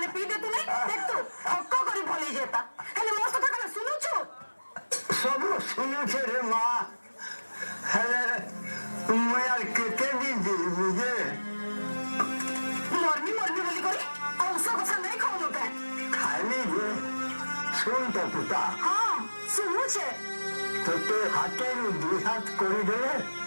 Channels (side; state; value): both; inverted; correlation -1.00